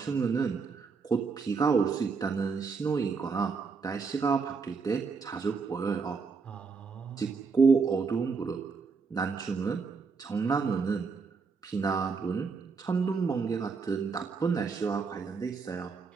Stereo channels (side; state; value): left; quieter; 5.0 dB